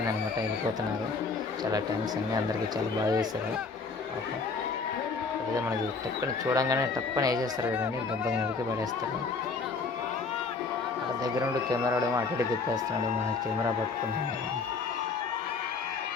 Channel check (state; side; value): quieter; right; 4.5 dB